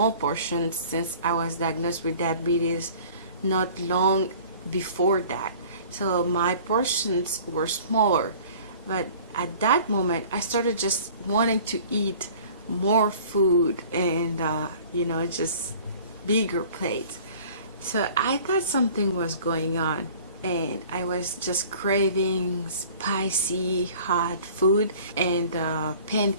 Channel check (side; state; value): both; inverted; correlation -0.48